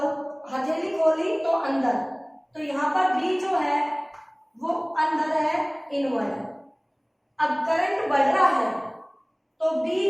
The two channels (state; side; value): identical; both; correlation 1.00